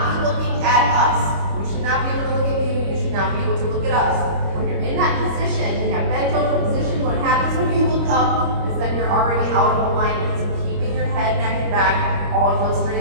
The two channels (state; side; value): late; left; 25 ms